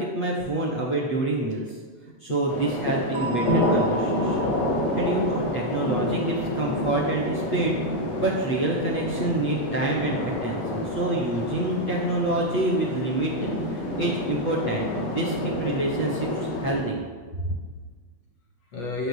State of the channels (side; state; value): right; late; 8.3 ms